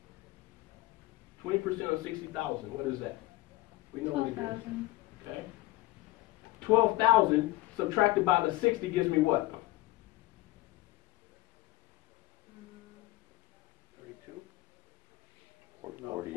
20% of 60,000. What is that? We know what it is. 12,000. Okay. 12,000 subtracted by the 60 gives me what? 32?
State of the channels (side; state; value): right; quieter; 18.5 dB